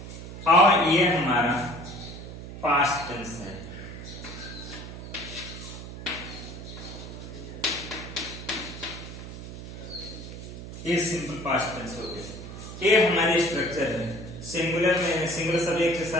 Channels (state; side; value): noise; right; hum, 11 dB below the sound